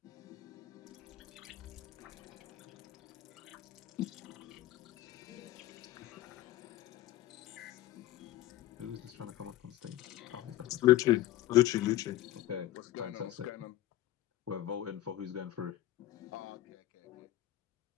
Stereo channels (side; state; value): right; quieter; 14.5 dB